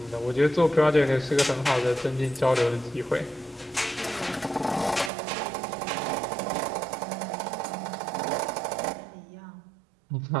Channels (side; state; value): left; drops out; at 5.1 s